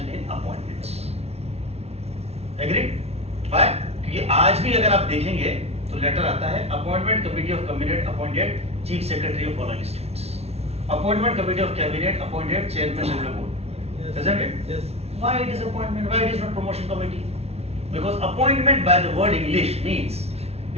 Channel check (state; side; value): late; left; 0.30 ms